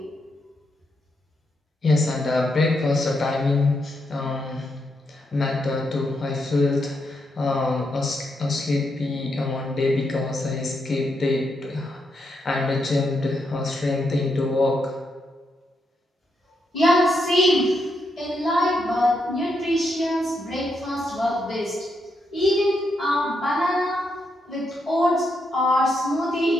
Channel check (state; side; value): normal; both; correlation 0.81